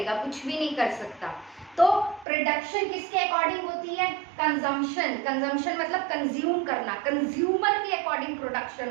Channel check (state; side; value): drops out; left; at 2.2 s